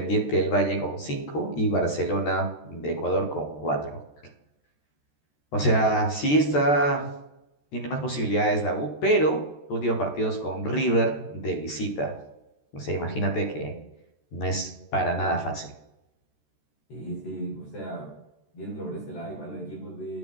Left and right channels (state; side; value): late; right; 13 ms